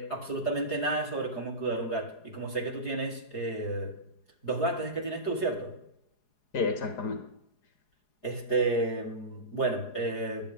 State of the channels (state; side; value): late; right; 4.8 ms